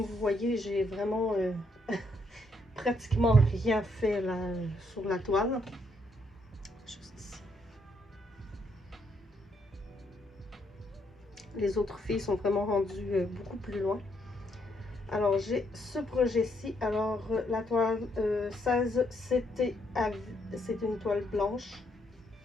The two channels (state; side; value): normal; both; correlation 0.74